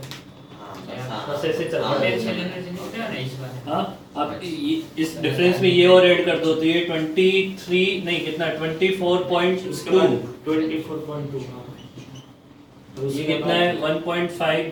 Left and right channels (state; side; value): identical; both; correlation 1.00